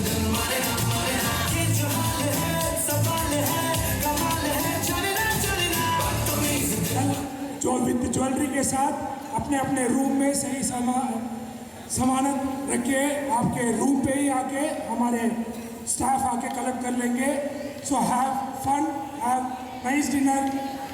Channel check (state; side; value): identical; both; correlation 1.00